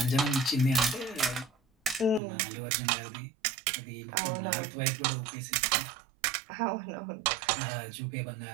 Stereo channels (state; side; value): drops out; left; at 2.2 s